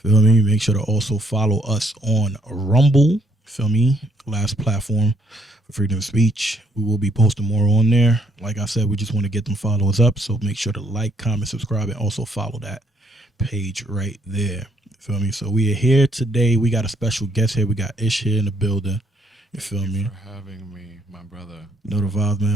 me? Make sure to also follow us on Rumble. Feel me? Last platform for freedom of speech. We will be posting more on there. Like I said, we just want to get them followers up. So make sure to like, comment, subscribe, and also follow that page right there. Feel me? So we are here today. We got a special guest here. We got Ish here in the building. You feel Thank you me? for having me, my brother. Know the vibes,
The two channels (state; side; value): normal; both; correlation 0.70